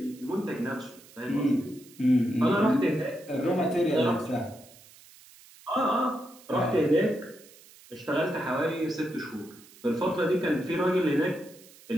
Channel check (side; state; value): right; noise; hiss, 23 dB below the sound